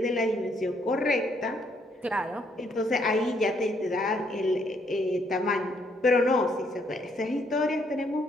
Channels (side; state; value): both; normal; correlation 0.71